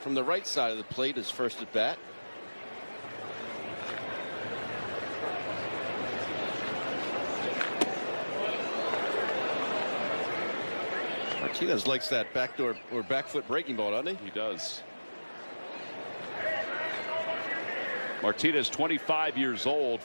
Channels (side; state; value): both; inverted; correlation -1.00